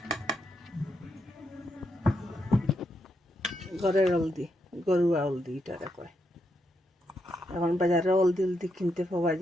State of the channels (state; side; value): normal; both; correlation 0.81